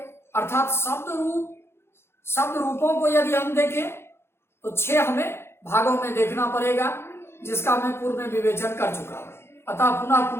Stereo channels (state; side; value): late; right; 0.12 ms